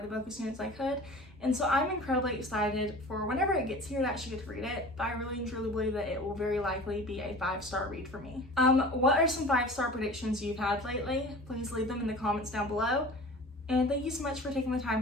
book as soon as I could. And so I'm incredibly excited for whenever it gets here to actually get to read it. But I really and truly believe that it will very likely be a 5-star read for me. What are some 5-star predictions you've had lately? Please leave them in the comments down below. And thank you so much for taking the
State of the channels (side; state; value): both; normal; correlation 0.40